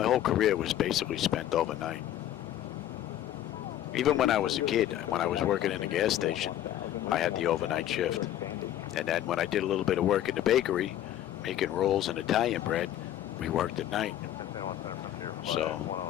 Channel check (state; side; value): quieter; right; 12.2 dB